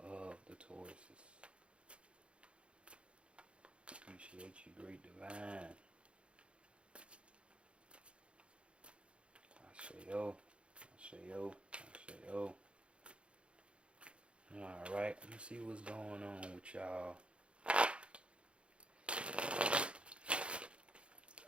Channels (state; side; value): late; left; 0.058 ms